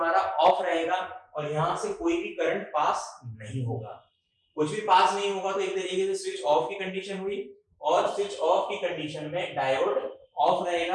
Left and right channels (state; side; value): identical; both; correlation 1.00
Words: ऑफ रहेगा और यहां से कोई भी करंट पास नहीं होगा। कुछ भी पास नहीं होगा तो एक तरीके से स्विच ऑफ की कंडीशन हुई, और स्विच ऑफ की कंडीशन में डायोड ऑफ